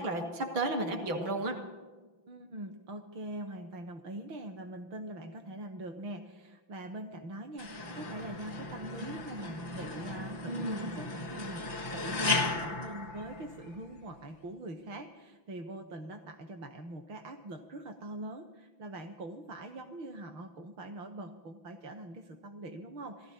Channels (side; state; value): left; late; 5.9 ms